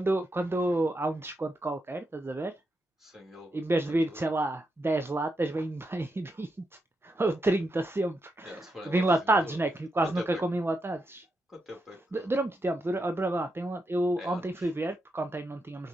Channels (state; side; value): normal; both; correlation 0.84